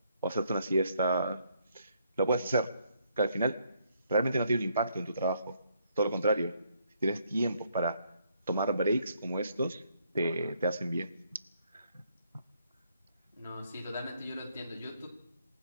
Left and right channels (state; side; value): inverted; both; correlation -0.71